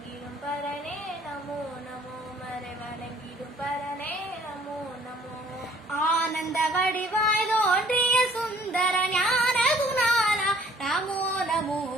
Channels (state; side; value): normal; both; correlation 0.57